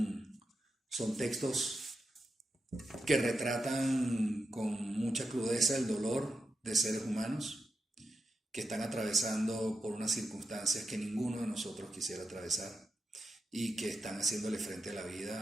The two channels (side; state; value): both; normal; correlation 0.88